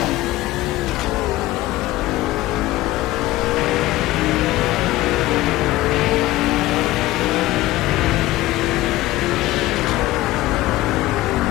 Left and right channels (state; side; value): quieter; right; 17.2 dB